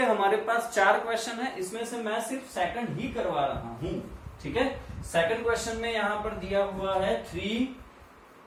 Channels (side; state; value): both; identical; correlation 1.00